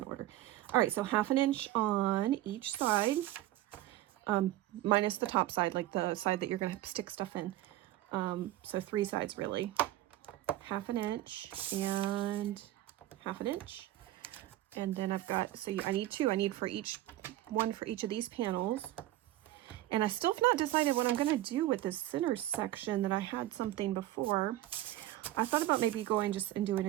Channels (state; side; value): quieter; left; 14.9 dB